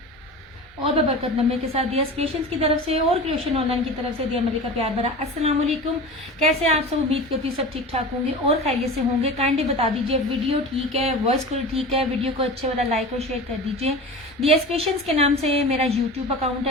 और बरकत नमे के साथ दिया क्रिएशंस की तरफ से और क्रिएशन ऑनलाइन की तरफ से दिया मलिक का प्यार भरा अस्सलाम वालेकुम। कैसे आप सब? उम्मीद करती हूँ सब ठीक ठाक होंगे और खैरियत से होंगे। काइंडली बता दीजिए वीडियो ठीक है, वॉइस कॉल ठीक है, वीडियो को अच्छे वाला लाइक और शेयर कर दीजिए। दिया क्रिएशंस के नाम से मेरा यूट्यूब अकाउंट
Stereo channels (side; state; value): both; normal; correlation 0.33